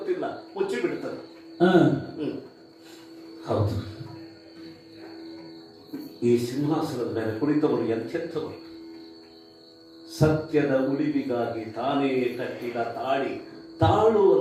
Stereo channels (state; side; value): identical; both; correlation 1.00